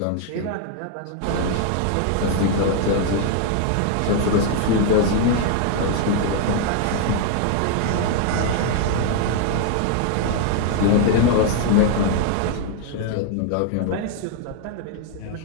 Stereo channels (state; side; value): different; both; correlation 0.00